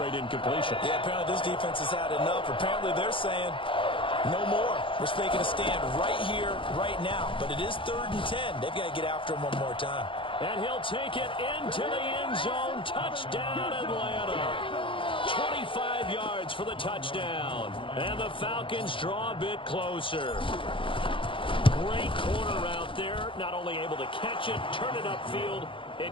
incompletions. Yeah, apparently this defense has had enough. Apparently they're saying, no more. We're making a stand right here, right now. But it is 3rd and 10. They've got to get after him one more time. And he'll take it into the end zone. Touchdown, Atlanta. 25 yards for the touchdown. And the Falcons draw a bit closer. Great corner out there. Not only able to catch it, turn it upfield,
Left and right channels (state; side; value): late; right; 0.25 ms